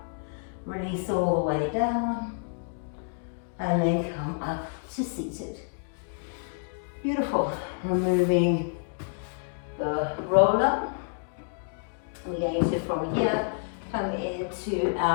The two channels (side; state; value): right; silent; digital silence